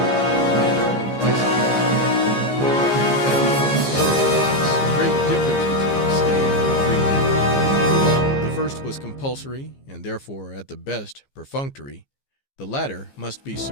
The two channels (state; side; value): late; right; 15 ms